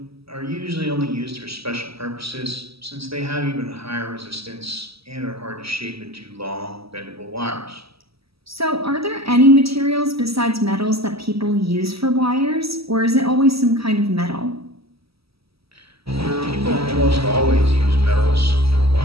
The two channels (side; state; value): left; late; 0.76 ms